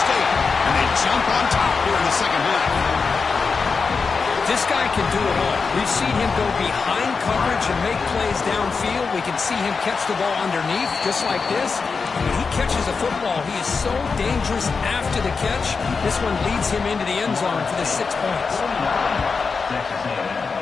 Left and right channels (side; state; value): right; quieter; 4.9 dB